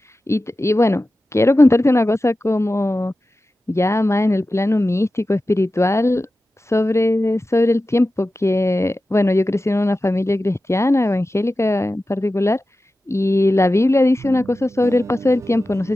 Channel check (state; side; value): normal; both; correlation 0.94